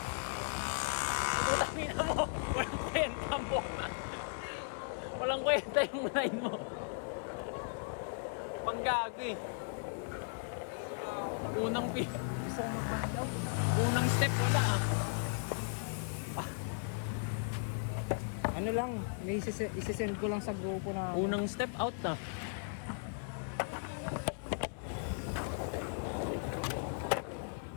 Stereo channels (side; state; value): right; silent; digital silence